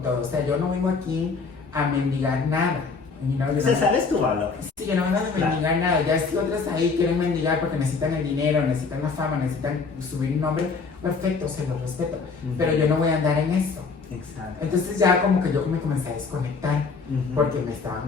todo. O sea, yo no vengo aquí a mendigar nada. You know, yo O sea, no- sabes tu valor. Sí, yo no vengo a Claro. mendigar nada. Ya si otras ahí quieren mendigar porque necesitan el dinero, necesitan la fama, necesitan subir un nombre, perfecto, se los respeto. Ujú. Pero yo no voy a andar en eso. Exacto. Entonces ya como que yo me comencé a desconectar Ujú. porque me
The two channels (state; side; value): quieter; right; 4.8 dB